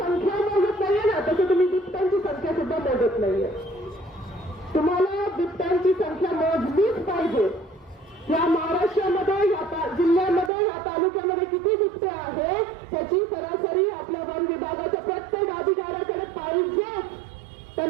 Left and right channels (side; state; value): left; drops out; at 10.5 s